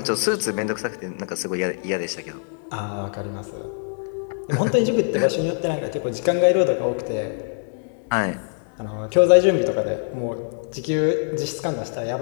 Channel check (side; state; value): right; silent; digital silence